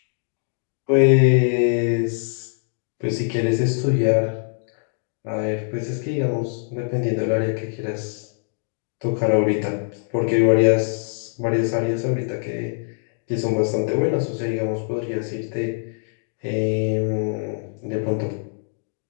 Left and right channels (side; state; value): right; silent; digital silence